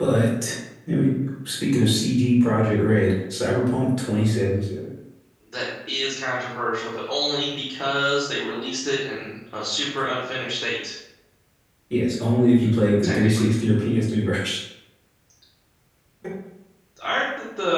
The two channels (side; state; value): both; identical; correlation 1.00